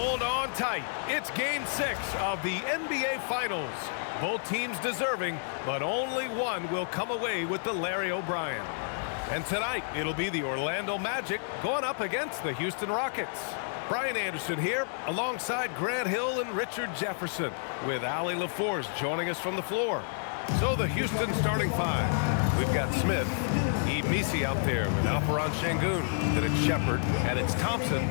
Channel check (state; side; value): silent; right; digital silence